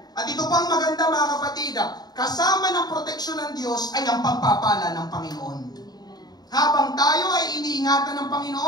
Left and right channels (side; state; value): right; late; 0.19 ms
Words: At ito pang maganda mga kapatid, kasama ng proteksyon ng Diyos ay ang pagpapala ng Panginoon. Habang tayo ay iniingatan ng